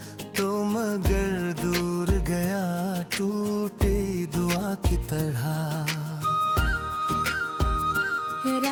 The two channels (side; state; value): both; identical; correlation 1.00